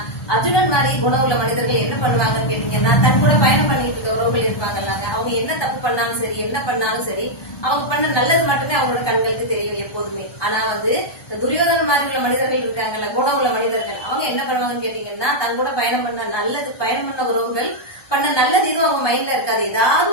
அர்ஜுனன் மாதிரி குணம் உள்ள மனிதர்கள் என்ன பண்ணுவாங்கன்னு கேட்டீங்கன்னா, தன் கூட பயணம் பண்ணிட்டு இருக்க உறவுகள் இருப்பாங்கல்லாங்க, அவங்க என்ன தப்பு பண்ணாலும் சரி, என்ன பண்ணாலும் சரி, அவங்க பண்ண நல்லது மட்டுமே அவங்களோட கண்களுக்கு தெரியும் எப்போதுமே. ஆனா துரியோதன மாதிரி உள்ள மனிதர்கள் இருக்காங்கல்ல, குணம் உள்ள மனிதர்கள், அவங்க என்ன பண்ணுவாங்கன்னு கேட்டீங்கன்னா, தன் கூட பயணம் பண்ண உறவுகள் பண்ண நல்லது எதுவும் அவங்க மைண்ட்ல இருக்காது. ஏதாவது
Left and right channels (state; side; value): late; right; 1.2 ms